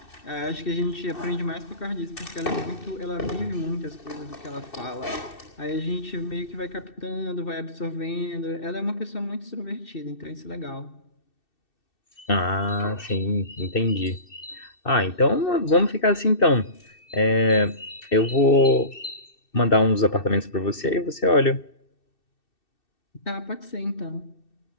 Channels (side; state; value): right; late; 2.6 ms